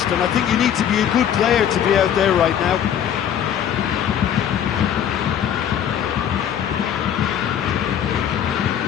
and I think you need to be a good player to be out there right now.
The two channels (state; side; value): quieter; right; 9.4 dB